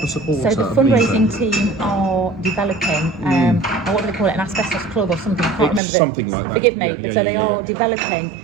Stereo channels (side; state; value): left; drops out; at 5.8 s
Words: supporter? So the fundraising team are developing, what do they call it, an asbestos club or something? I can't remember. Something like that. Forgive me. So they are